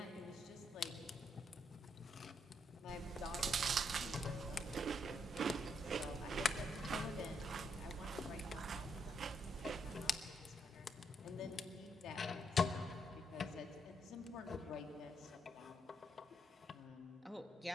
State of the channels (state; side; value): normal; both; correlation 0.76